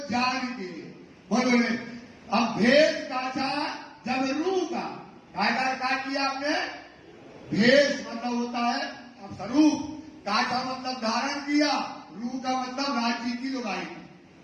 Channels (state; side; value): identical; both; correlation 1.00